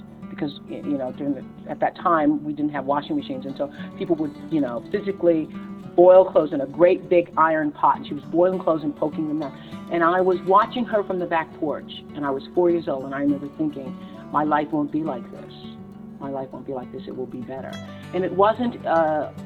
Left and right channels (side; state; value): both; identical; correlation 1.00